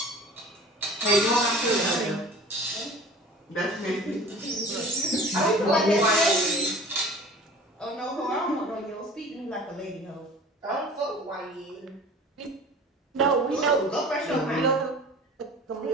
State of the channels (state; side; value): normal; both; correlation 0.43